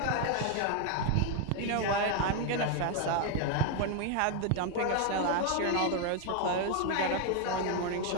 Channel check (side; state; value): both; different; correlation 0.01